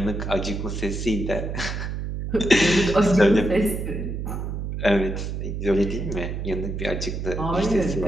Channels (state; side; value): noise; right; hum, 4 dB below the sound